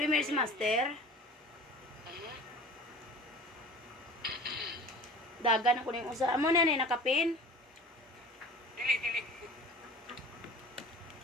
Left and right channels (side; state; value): both; normal; correlation 0.41